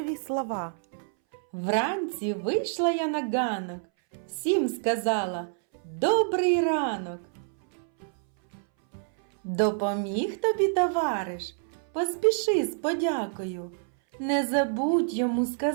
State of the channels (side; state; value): left; silent; 60 dB below the other